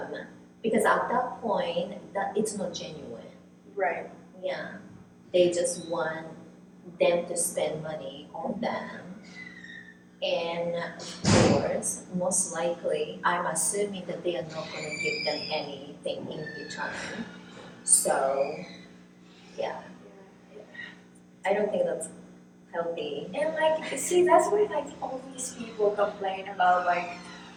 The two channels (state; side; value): identical; both; correlation 1.00